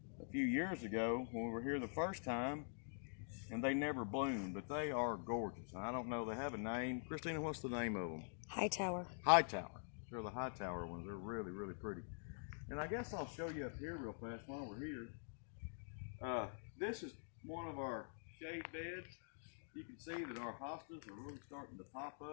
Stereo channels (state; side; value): silent; right; digital silence